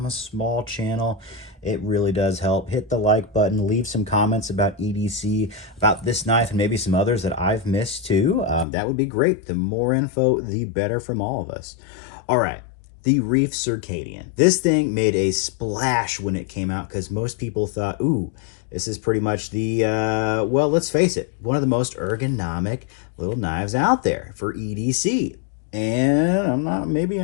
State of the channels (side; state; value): right; drops out; at 8.7 s